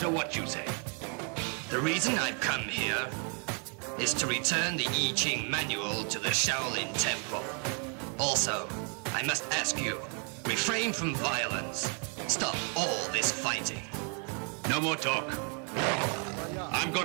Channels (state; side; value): quieter; left; 39.5 dB